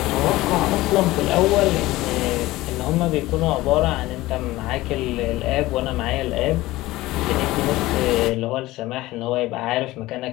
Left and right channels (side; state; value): right; quieter; 18.1 dB